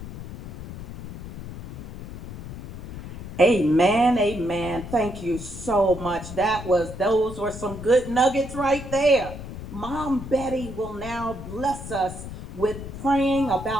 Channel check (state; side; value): noise; left; rumble, 10 dB below the sound